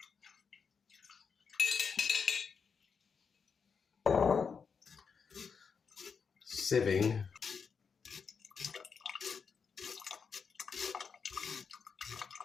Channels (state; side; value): quieter; right; 5.9 dB